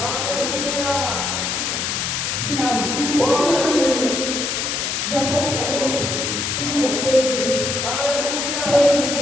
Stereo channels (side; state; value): left; noise; hiss, 1 dB below the sound